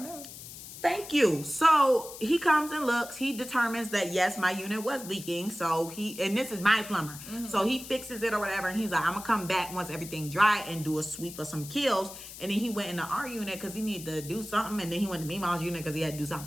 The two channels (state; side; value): noise; left; hiss, 13 dB below the sound